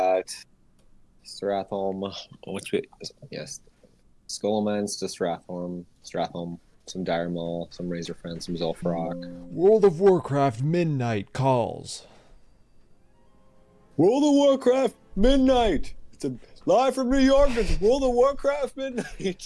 Stratholm, yes, Skullman's to Stratholm, some Dire Maul, some Razor Friend, some Zul'Farrak. World of Warcraft Midnight calls. World of Warcraft Midnight! It's live from New York, it's World of Warcraft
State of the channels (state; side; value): identical; both; correlation 1.00